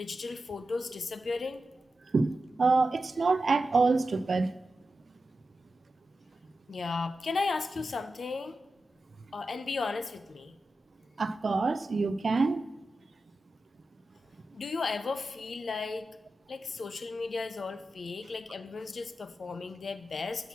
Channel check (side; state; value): both; normal; correlation 0.92